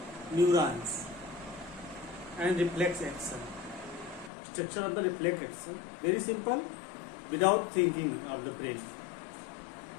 neurons and reflex action. Structure of the reflex action. Very simple, without thinking of the brain.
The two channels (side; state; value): right; drops out; at 4.3 s